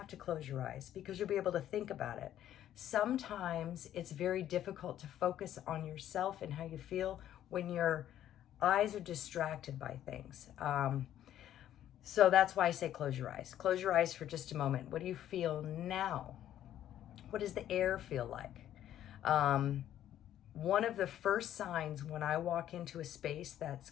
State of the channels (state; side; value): quieter; right; 11.6 dB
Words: to close your eyes because you'll be able to think about it. Sometimes it's very difficult to focus on yourself and how you feel when your eyes are distracted by things. So that's why I say close your eyes. Close your eyes for just a moment. What do you feel now? What does the air feel like? One of the first signs when I walk into a space that's